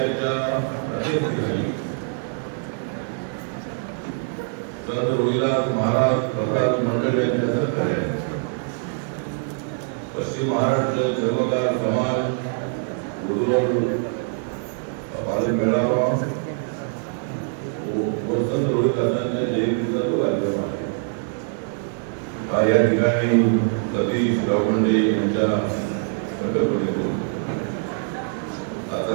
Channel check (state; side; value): silent; left; 55 dB below the other